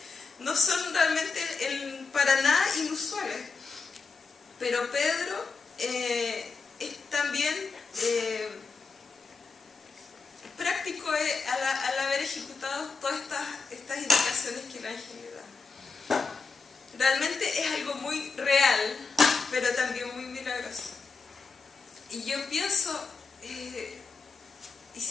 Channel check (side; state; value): right; quieter; 4.7 dB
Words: no son realmente para nada inusuales. Pero Pedro es también práctico al haber ejecutado todas estas indicaciones que el ángel le da. Realmente es algo muy real, pero también muy milagroso. Y yo pienso, ¿y